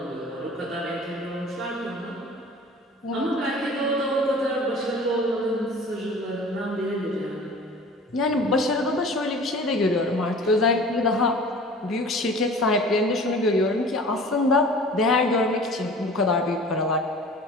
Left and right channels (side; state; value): both; normal; correlation 0.43